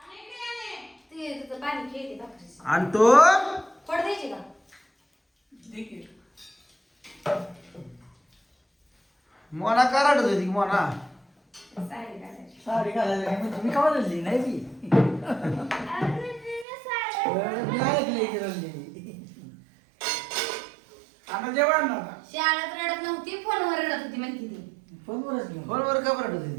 ते तुझं पाणी खेळते भाकरीच. आणि तो पड द्यायची का? मोना कराडत होती मोना. साडी घालायची. साडी घालायला काय म्हणजे मी का बदलली नाही मी मी ऐकलंय की रडली. आता जेवण नव्हता. शाळेत रडत नव्हती फोनवर रडत होती म्हणते ती. फोनवरच घेऊन फोनवर का बरं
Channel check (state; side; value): drops out; left; at 16.7 s